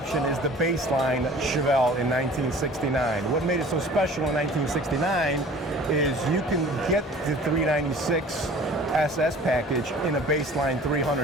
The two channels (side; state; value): both; normal; correlation 0.46